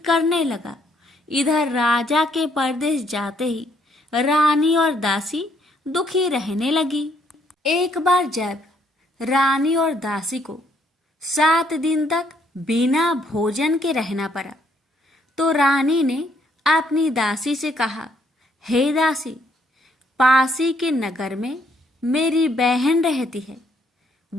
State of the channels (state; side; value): normal; both; correlation 0.69